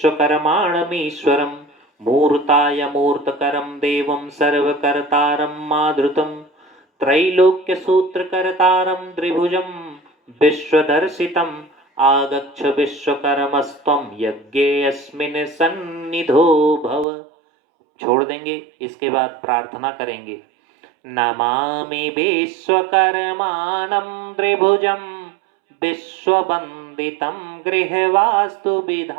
मूर्ताय मूर्तकरं देवं सर्वकर्तारं माधृतं त्रैलोक्य सूत्रकर्तारं त्रिभुजं विश्वदर्शितम् आगच्छ विश्वकर्मस्त्वं यज्ञेऽस्मिन् सन्निधो भव। छोड़ देंगे। इसके बाद प्रार्थना करेंगे नमामि विश्वकर्मानं त्रिभुजं विश्ववन्दितं गृहवास्तु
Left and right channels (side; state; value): left; drops out; at 17.1 s